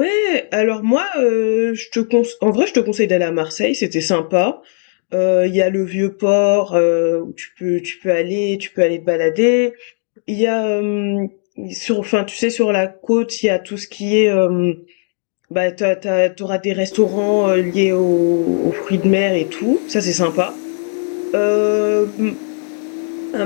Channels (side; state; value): right; silent; 65 dB below the other